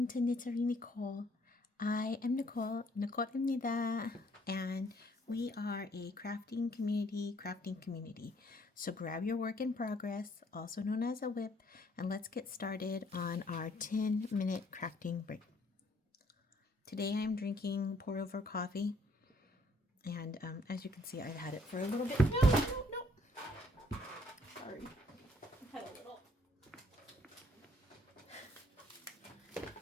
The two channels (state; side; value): normal; both; correlation 0.65